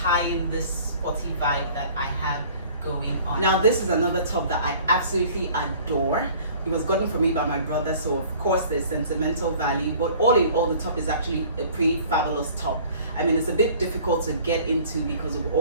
in this sporty vibe that I have going on. Now this is another top that I absolutely adore. It was gotten for me by my brother, so of course there's sentimental value, but all in all the top is actually a pretty fabulous top. I mean, it's a bit difficult to get into because of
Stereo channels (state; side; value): inverted; both; correlation -0.50